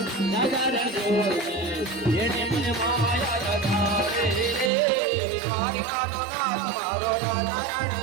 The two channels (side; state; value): left; drops out; at 4.7 s